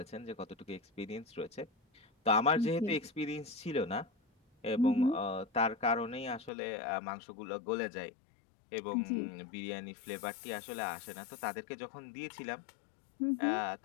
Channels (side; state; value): right; drops out; at 6.5 s